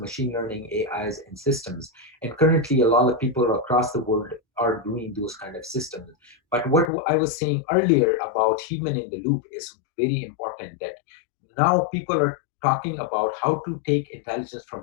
learning, AIs, and systems. And currently, a lot of people across the world are doing those kind of systems. But what I was saying earlier about human in the loop is very important, that now people are talking about how to take intelligence from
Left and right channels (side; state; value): right; drops out; at 6.9 s